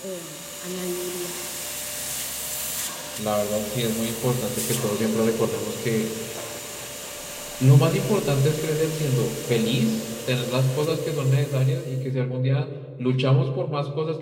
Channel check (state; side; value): identical; both; correlation 1.00